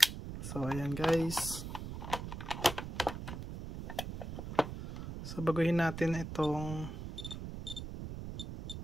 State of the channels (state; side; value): noise; right; rumble, 7 dB below the sound